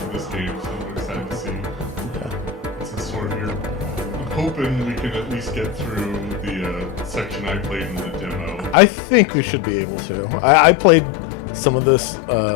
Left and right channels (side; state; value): right; drops out; at 8.8 s